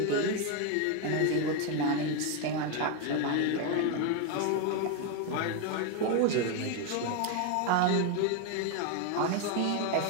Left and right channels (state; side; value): different; both; correlation 0.01